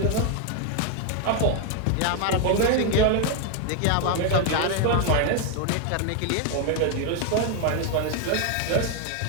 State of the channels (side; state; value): both; different; correlation 0.01